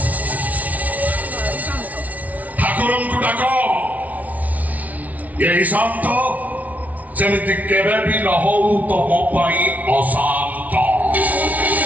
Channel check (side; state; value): left; late; 0.072 ms